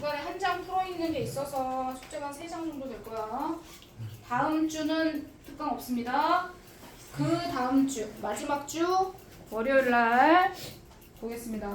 한 장 풀어있는 게 있어서 숙제가 3장 정도 될 거야. 다음 주는 특강 없습니다. 그 다음 주 마지막 주 월요일 날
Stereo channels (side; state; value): both; identical; correlation 1.00